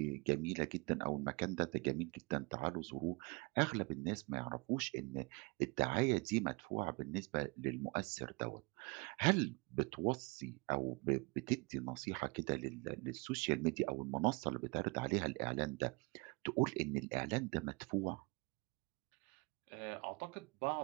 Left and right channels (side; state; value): left; quieter; 28.0 dB